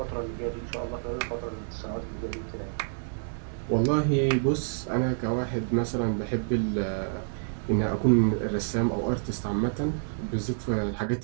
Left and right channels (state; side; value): silent; left; digital silence